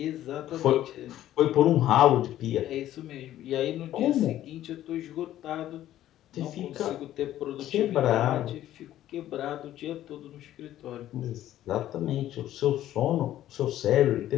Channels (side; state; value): right; quieter; 12.9 dB